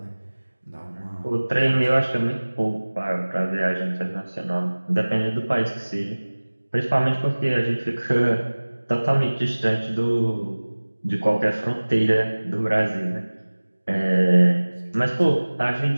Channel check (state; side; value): inverted; both; correlation -1.00